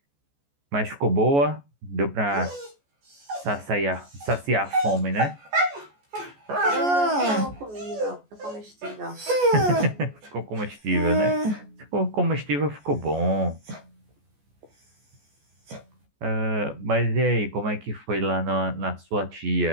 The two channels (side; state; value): left; late; 14 ms